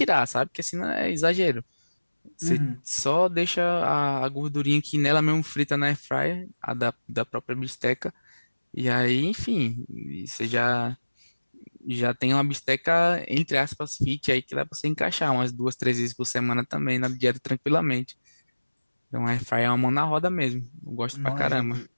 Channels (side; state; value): both; inverted; correlation -1.00